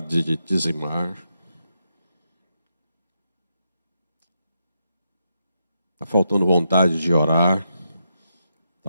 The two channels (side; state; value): both; inverted; correlation -0.83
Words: de dizimar. Está faltando vontade de orar.